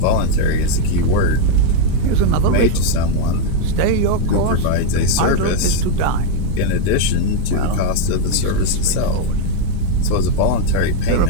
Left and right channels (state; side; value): different; both; correlation 0.01